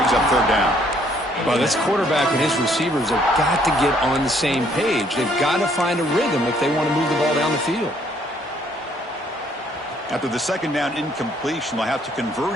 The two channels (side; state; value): both; normal; correlation 0.65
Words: up third down. Well, this quarterback and his receivers have got to get on the same page. They've got to find a rhythm if they want to move the ball down the field. After the second down incompletion, they'll have to convert